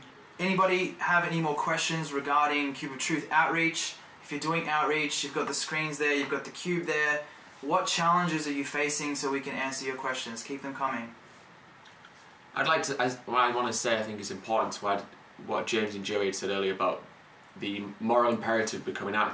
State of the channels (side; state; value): both; identical; correlation 1.00